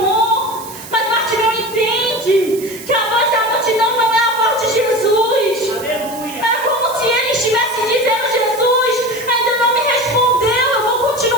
Mas Bartimeu entende que a voz da multidão não é a voz de Jesus. É como se ele estivesse dizendo: Jesus ainda não me respondeu, eu vou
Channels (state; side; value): noise; right; hiss, 15 dB below the sound